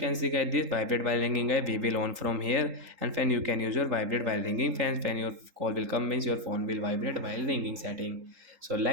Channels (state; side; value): late; left; 3.8 ms